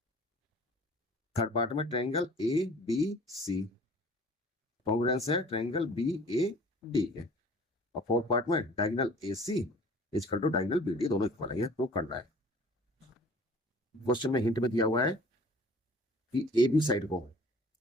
थर्ड पार्ट में triangle A B C congruence है ट्रायंगल बी ए डी के। और फोर्थ पार्ट में diagonal A C equal to diagonal B D दोनों इक्वल है। ये प्रूव करना है। क्वेश्चन में हिंट में दिया हुआ है कि ए बी साइड को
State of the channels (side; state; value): both; normal; correlation 0.49